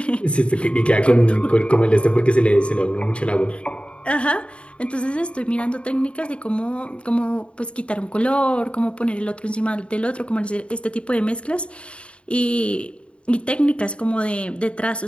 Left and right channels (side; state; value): right; late; 0.058 ms